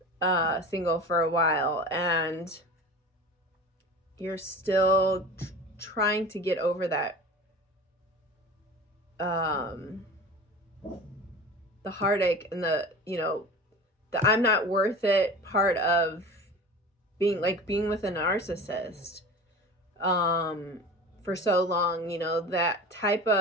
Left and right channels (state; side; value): normal; both; correlation 0.35